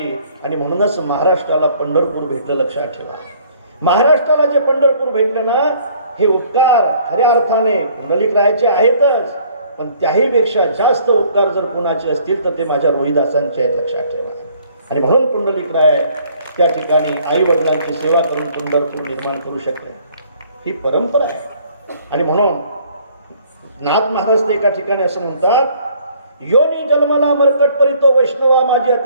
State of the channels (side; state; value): both; inverted; correlation -0.59